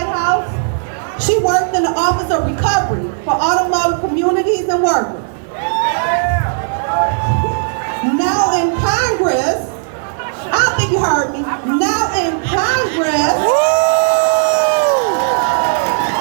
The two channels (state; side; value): silent; left; digital silence